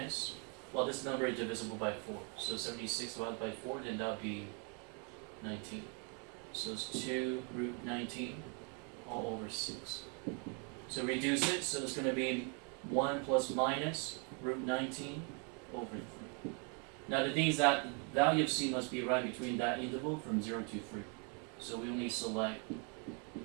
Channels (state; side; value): quieter; left; 37.1 dB